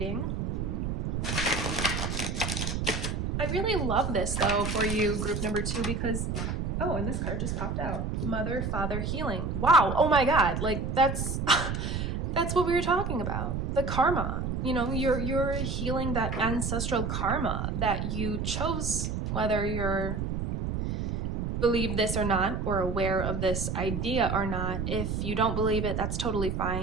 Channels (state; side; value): noise; right; rumble, 2 dB below the sound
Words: I really love this though for you, group number 2, because, oh, and this card just popped out. Mother, Father, Healing. Wow, oh my God, like that's what we were talking about. The karma, you know, you're healing that ancestral karma that you chose, whether you're believe this or not, or aware of this idea or not. If you don't believe it, that's totally